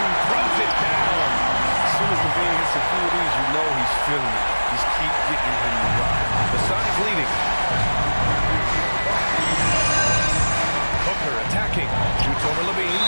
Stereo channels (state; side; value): inverted; both; correlation -1.00